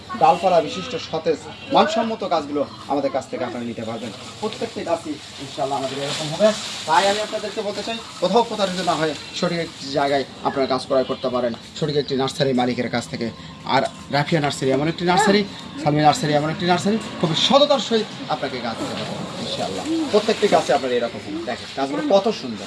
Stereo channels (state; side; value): identical; both; correlation 1.00